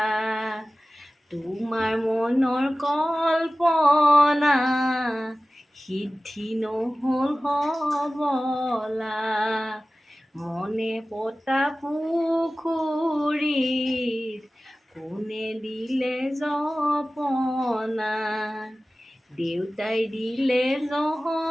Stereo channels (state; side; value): normal; both; correlation 0.97